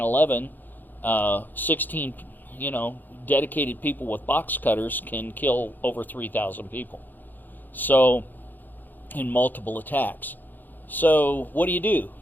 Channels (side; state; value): right; late; 0.087 ms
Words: 16, dedicated people with box cutters can kill over 3,000 people. So, in multiple attacks. So, what do?